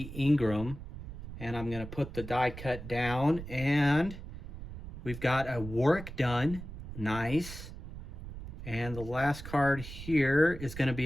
Ingram. And I'm going to put the die cut down. And we've got a Warwick Dunn. Nice. And the last card here is going to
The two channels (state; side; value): noise; right; rumble, 11 dB below the sound